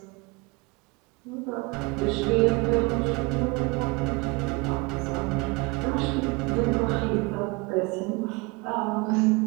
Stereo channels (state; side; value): quieter; left; 26.5 dB